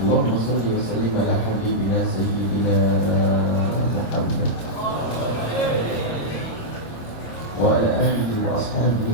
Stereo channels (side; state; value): right; late; 26 ms